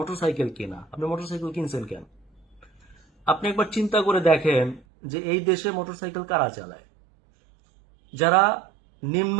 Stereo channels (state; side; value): drops out; left; at 4.8 s